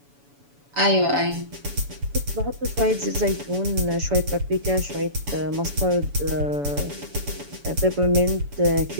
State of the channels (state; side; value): late; left; 7.0 ms